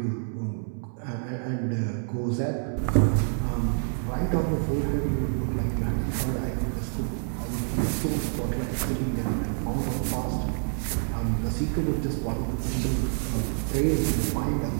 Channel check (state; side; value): silent; left; 60 dB below the other